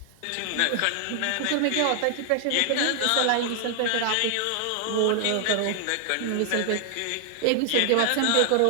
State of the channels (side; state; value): both; different; correlation 0.00